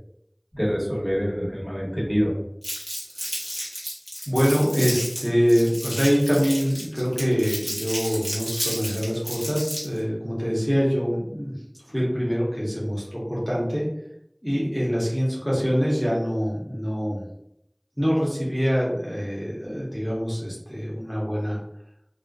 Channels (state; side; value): identical; both; correlation 1.00